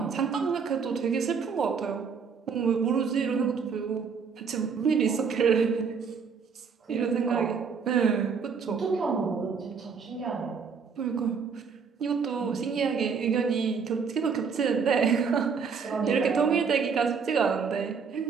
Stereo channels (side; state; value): left; quieter; 5.8 dB